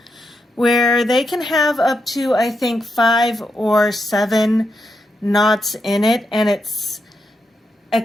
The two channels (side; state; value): both; normal; correlation 0.84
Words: where they can have up to, I think, 5 or 7 knots in it, and it's